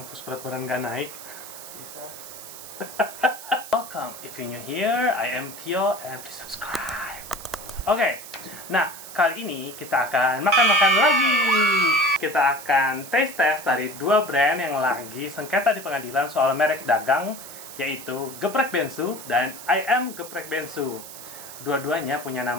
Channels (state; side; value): noise; right; hiss, 13 dB below the sound